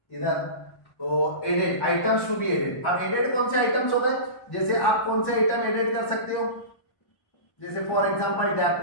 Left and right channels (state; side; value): late; right; 1.1 ms